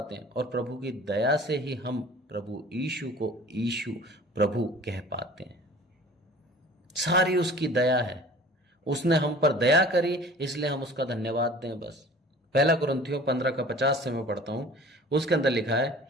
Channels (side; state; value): both; normal; correlation 0.46